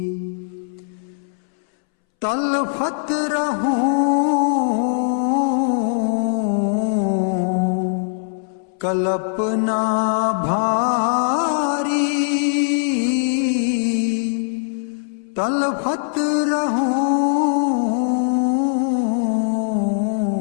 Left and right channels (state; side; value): silent; right; 65 dB below the other